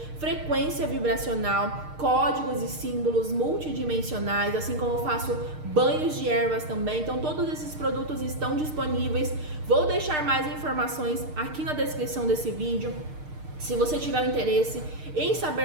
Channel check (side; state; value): left; late; 6.6 ms